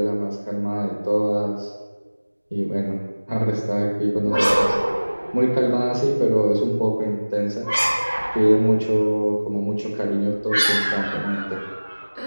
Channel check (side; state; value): both; inverted; correlation -1.00